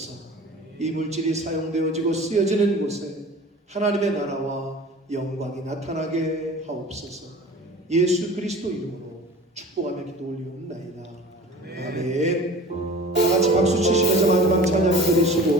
이 물질이 사용되어지고 쓰여지는 곳에 하나님의 나라와 영광이 나타나게 하옵소서. 예수 그리스도 이름으로 축복하며 기도 올리옵나이다. 아멘. 다 같이 박수 치시면서 마지막 찬양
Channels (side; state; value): both; normal; correlation 0.41